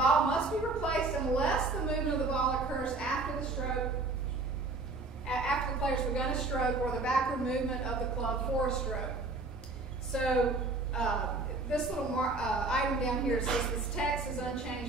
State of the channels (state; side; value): quieter; left; 3.4 dB